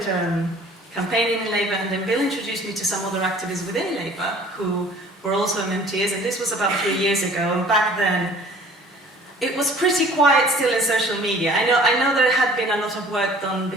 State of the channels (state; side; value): normal; both; correlation 0.51